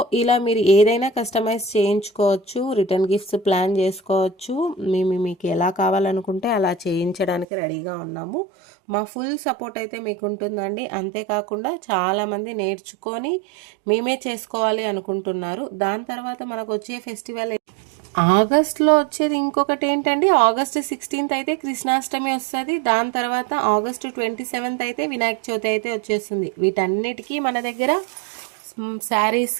ఇలా మీరు ఏదైనా కస్టమైజ్ చేయించుకోవచ్చు, రిటర్న్ గిఫ్ట్స్ ప్లాన్ చేసుకోవచ్చు. మీకు ఎలా కావాలనుకుంటే అలా చేయించడానికి రెడీగా ఉన్నాము. మా ఫుల్ సపోర్ట్ అయితే మీకు ఉంటుందండి. అంతేకాకుండా చాలామంది నేర్చుకొని మేమే చేసుకోవాలి అనుకుంటున్నారు. దాని తర్వాత మనకు వచ్చే ఫెస్టివల్ ఆగస్ట్లో వచ్చేది ఇంకొకటి ఏంటండి, ఆగస్ట్ 16th అయితే కృష్ణాష్టమి వస్తుంది. దాని తర్వాత ఆగస్టు 27th అయితే వినాయక చవితి అయితే వచ్చేస్తుంది. వీటన్నిటికీ మన దగ్గర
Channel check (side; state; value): left; drops out; at 7.5 s